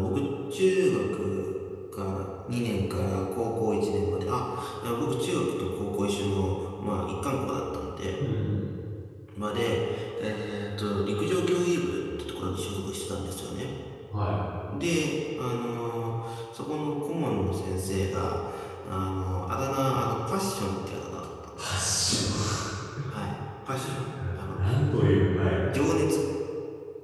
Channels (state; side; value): identical; both; correlation 1.00